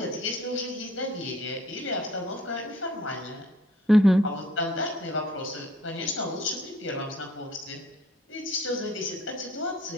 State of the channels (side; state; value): both; normal; correlation 0.57